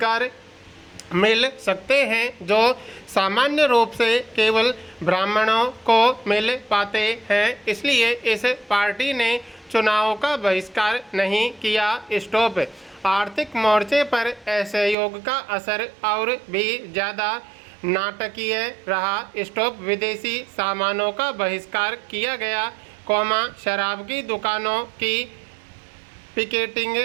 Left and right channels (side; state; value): left; drops out; at 15.0 s